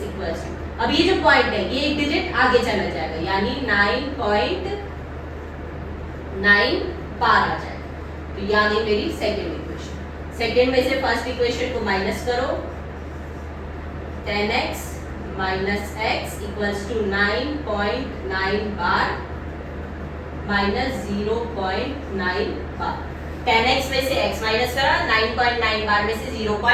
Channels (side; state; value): both; identical; correlation 1.00